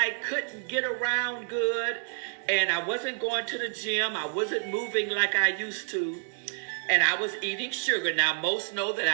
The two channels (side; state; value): left; silent; digital silence